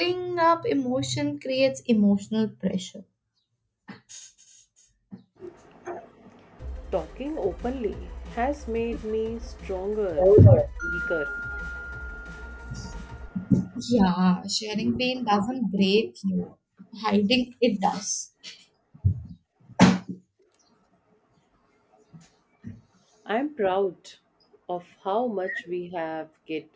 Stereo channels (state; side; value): identical; both; correlation 1.00